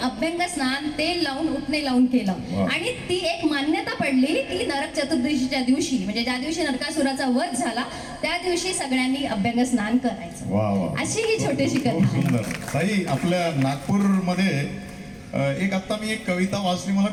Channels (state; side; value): identical; both; correlation 1.00